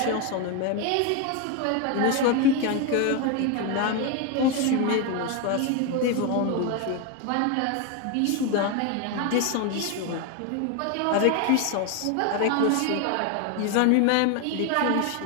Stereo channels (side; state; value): both; different; correlation 0.01